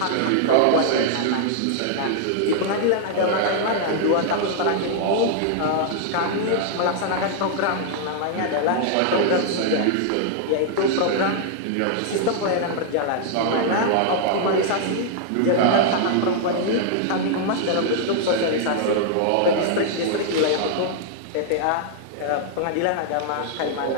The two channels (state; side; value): different; both; correlation -0.01